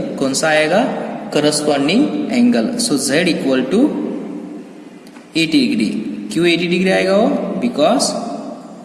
कौन सा आएगा, corresponding angle. So z equal to 80 degree. क्यों 80 डिग्री आएगा वो, because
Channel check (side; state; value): both; identical; correlation 1.00